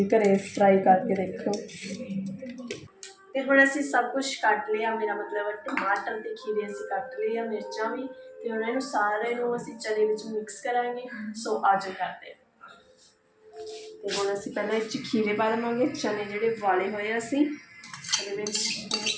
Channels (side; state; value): both; identical; correlation 1.00